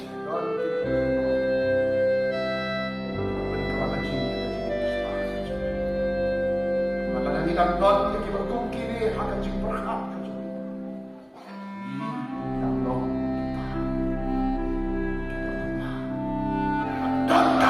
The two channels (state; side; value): identical; both; correlation 1.00